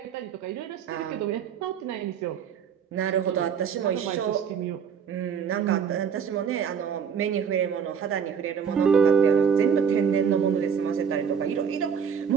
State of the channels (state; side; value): quieter; left; 7.1 dB